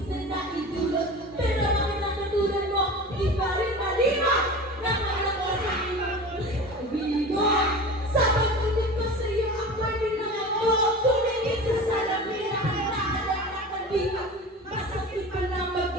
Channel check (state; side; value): normal; both; correlation 0.34